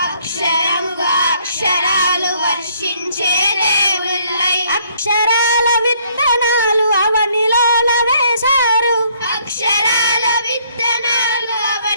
అక్షరముగా అక్షరాలు వర్షించే దేవుళ్ళై. అక్షరాల విత్తనాలు అవనిలోన వేశారు, అక్షరాల విత్తనాలు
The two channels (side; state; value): both; inverted; correlation -0.65